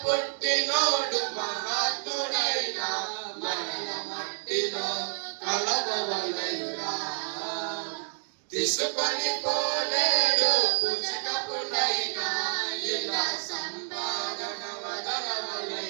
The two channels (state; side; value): silent; left; digital silence